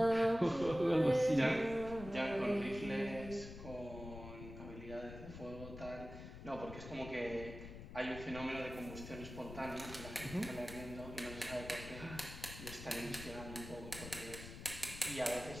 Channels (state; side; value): noise; left; rumble, 11 dB below the sound